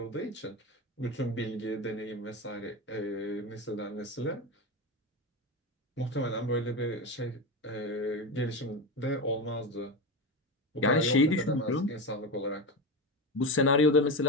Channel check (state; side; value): normal; both; correlation 0.20